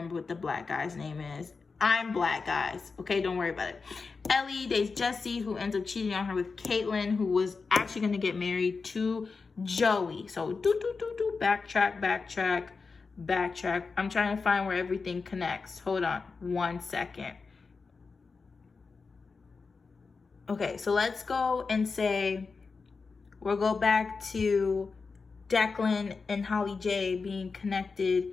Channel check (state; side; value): quieter; right; 4.6 dB